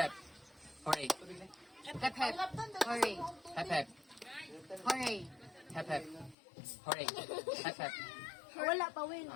Hooray. Hep hep. Hooray. Hep hep. Hooray. Hep hep. Hooray. Hep hep. Wala pa win.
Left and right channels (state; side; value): drops out; right; at 6.4 s